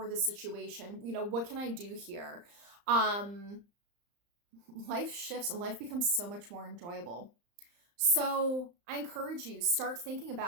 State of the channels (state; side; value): late; left; 35 ms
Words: this situation? What can I do here? Life shifts and life becomes so much more enjoyable. So I encourage you, start thinking